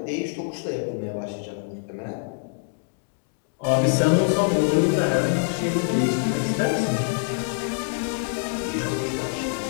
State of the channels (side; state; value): right; silent; 62 dB below the other